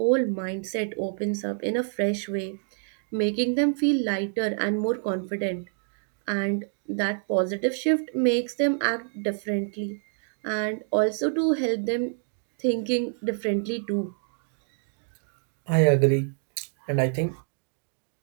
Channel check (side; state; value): left; silent; 60 dB below the other